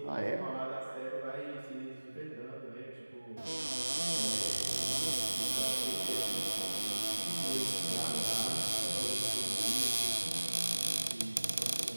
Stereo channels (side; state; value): both; inverted; correlation -1.00